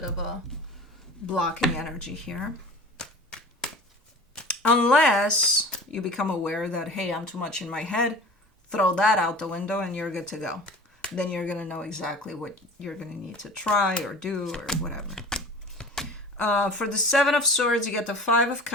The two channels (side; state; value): both; normal; correlation 0.40